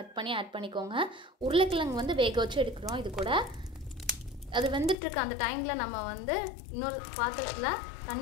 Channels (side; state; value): right; drops out; at 5.0 s